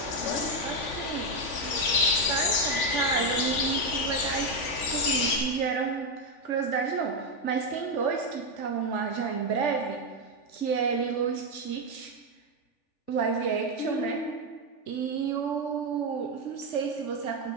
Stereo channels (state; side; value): late; right; 3.5 ms